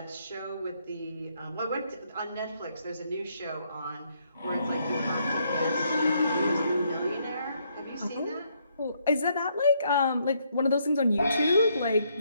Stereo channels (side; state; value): both; inverted; correlation -0.72